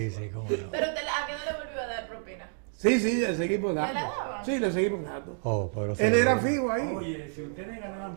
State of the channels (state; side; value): silent; left; digital silence